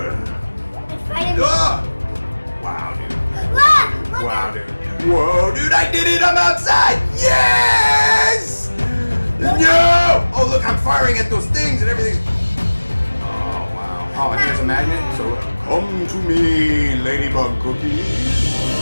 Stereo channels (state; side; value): inverted; both; correlation -1.00